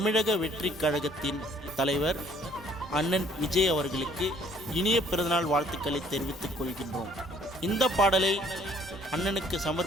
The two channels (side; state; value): both; normal; correlation 0.59